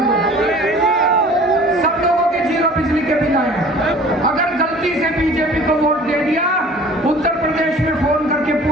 सब लोगों के जीरो बिजली के बिल आए। अगर गलती से बीजेपी को वोट दे दिया, उत्तर प्रदेश में फोन करके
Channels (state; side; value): normal; both; correlation 0.47